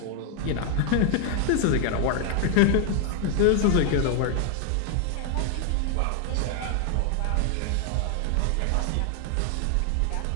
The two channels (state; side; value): different; both; correlation 0.00